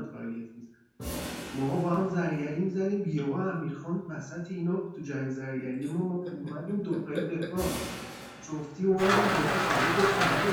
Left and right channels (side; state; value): both; identical; correlation 1.00